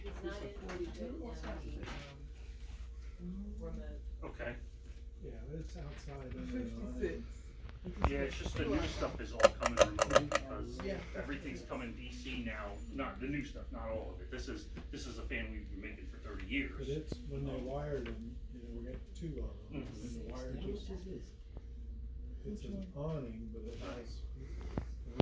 Is not it in 42? What's that? remote. Okay, Yeah, but it's outside under the 56. yeah, it's just the new stuff is all coming remote, because Yeah. everything's coming DC now, not the new stuff, not all of it. This is a fan we've been making for 30 years. But it's, when they wired them, you know, we got 2 of them, and the wire just, it's an awning, but it has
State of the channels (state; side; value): identical; both; correlation 1.00